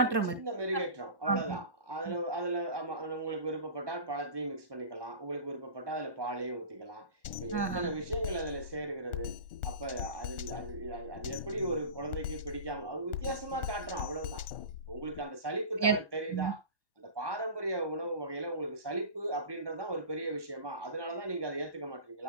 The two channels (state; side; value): late; left; 1.1 ms